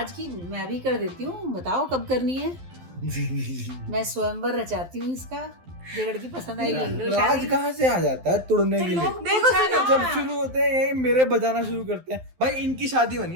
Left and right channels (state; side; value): late; left; 12 ms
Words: की मैं भी कर देती हूँ, बताओ कब करनी है? मैं स्वयंवर रचाती हूँ इसका, जो लड़की पसंद आएगी ले लो राज शादी। कहाँ से आ जाता है तुड़ने के लिए? देखो सुनो, जब शुरू होते हैं यही मेरे बजाना शुरू करते हैं, भाई इनकी शादी बनी